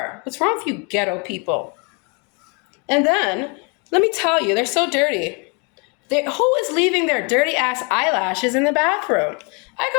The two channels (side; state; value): right; quieter; 33.6 dB